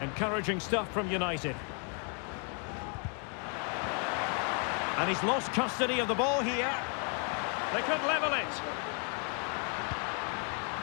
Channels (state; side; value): quieter; right; 39.6 dB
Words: Encouraging stuff from United. And he's lost custody of the ball here. They could level it.